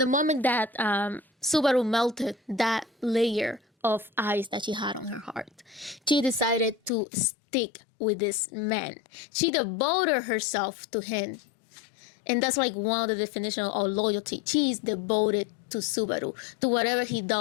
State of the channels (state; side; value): drops out; right; at 6.9 s